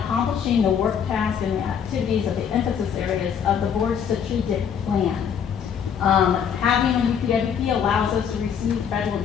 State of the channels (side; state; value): right; quieter; 7.7 dB